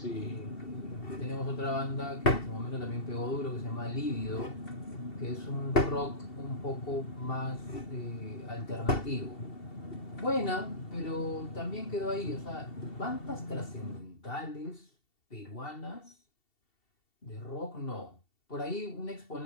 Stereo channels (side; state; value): right; late; 2.7 ms